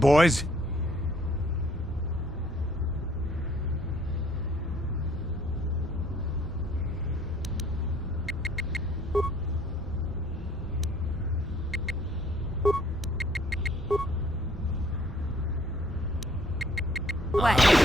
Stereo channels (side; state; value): both; normal; correlation 0.61